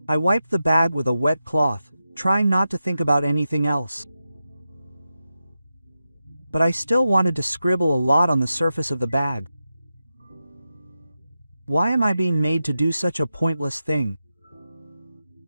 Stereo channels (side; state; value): both; inverted; correlation -0.91